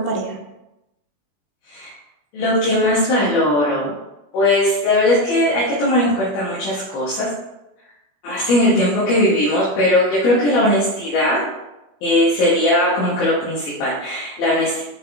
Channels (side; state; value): right; late; 21 ms